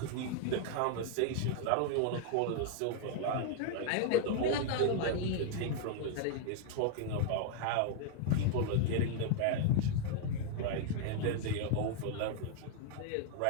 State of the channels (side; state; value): both; different; correlation 0.00